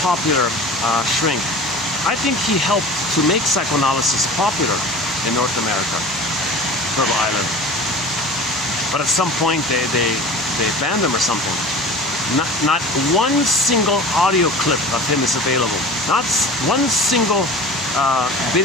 shrink. I think he helped to make psychoanalysis popular in North America, Turtle Island. But at some point they banned him or something. Not one single audio clip of him is available. Not one single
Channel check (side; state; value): both; normal; correlation 0.38